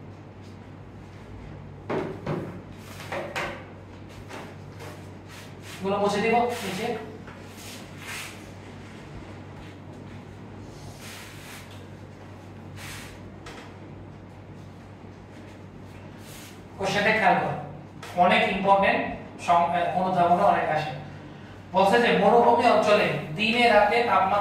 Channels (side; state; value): both; identical; correlation 1.00